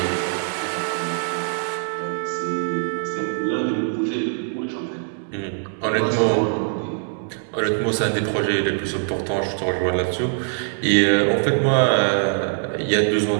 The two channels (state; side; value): silent; left; digital silence